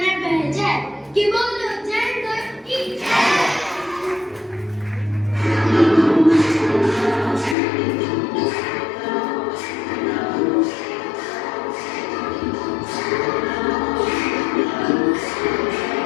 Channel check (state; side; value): drops out; right; at 7.6 s